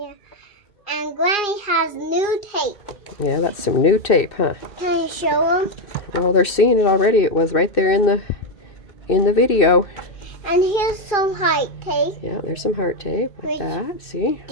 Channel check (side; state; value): right; late; 2.6 ms